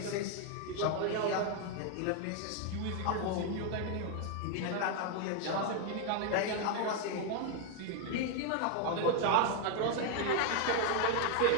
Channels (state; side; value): different; both; correlation 0.00